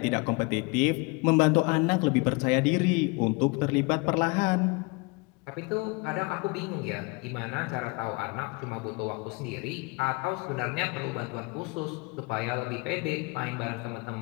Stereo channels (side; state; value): right; quieter; 28.0 dB